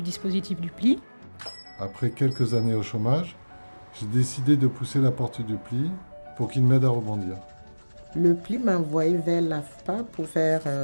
dispositif du pli. Après quelques années au chômage, j'ai décidé de pousser la porte du pli pour qu'il m'aide à rebondir. Le pli m'a envoyé vers l'AFPA pour faire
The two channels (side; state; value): both; inverted; correlation -1.00